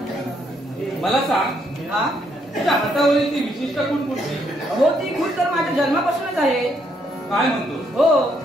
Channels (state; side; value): normal; both; correlation 0.73